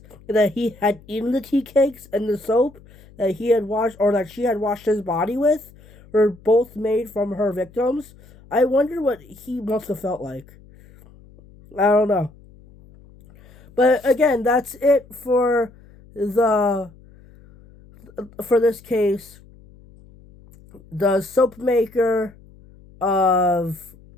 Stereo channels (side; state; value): left; noise; hum, 24 dB below the sound